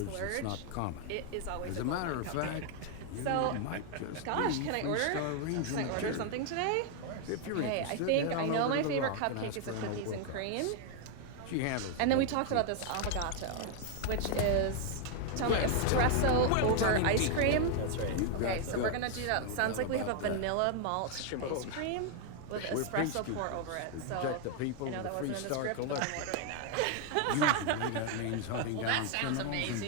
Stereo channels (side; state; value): both; different; correlation 0.00